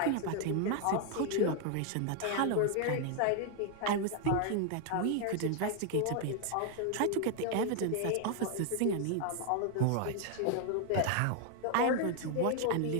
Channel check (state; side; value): different; both; correlation 0.00